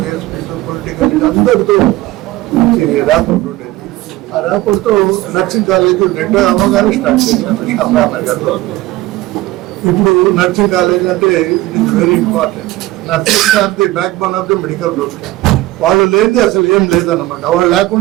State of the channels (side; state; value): left; quieter; 17.0 dB